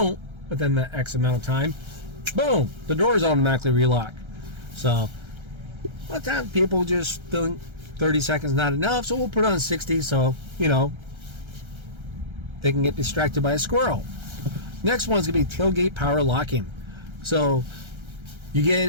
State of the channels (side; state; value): left; late; 1.3 ms